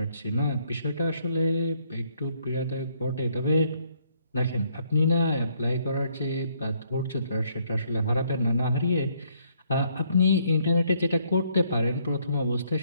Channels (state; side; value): inverted; both; correlation -0.69